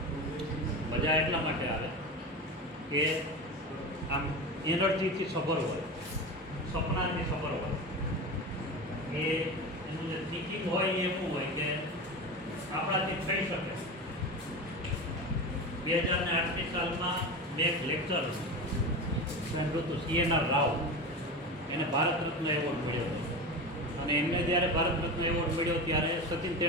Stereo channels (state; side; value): normal; both; correlation 0.26